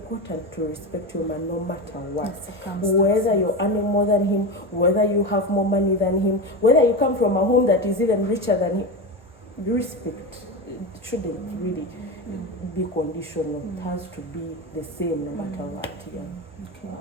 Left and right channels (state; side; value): normal; both; correlation 0.20